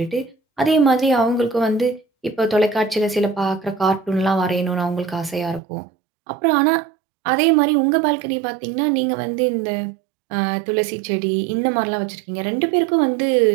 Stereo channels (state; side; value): drops out; left; at 5.6 s